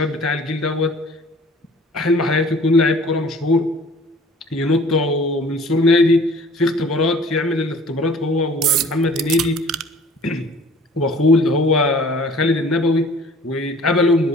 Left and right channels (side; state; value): both; normal; correlation 0.50